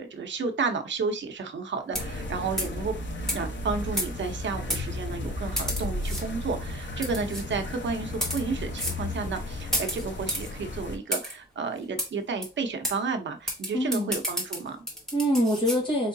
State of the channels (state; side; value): normal; both; correlation 0.40